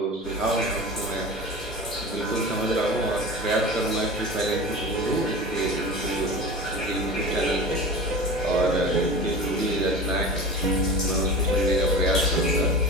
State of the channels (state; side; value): normal; both; correlation 0.32